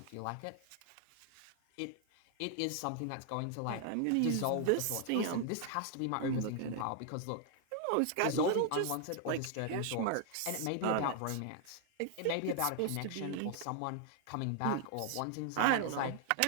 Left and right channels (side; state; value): both; different; correlation 0.00